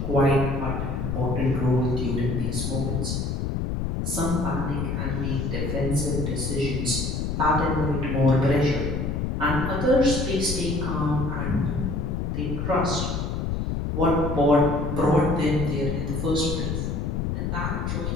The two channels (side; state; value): left; noise; rumble, 1 dB below the sound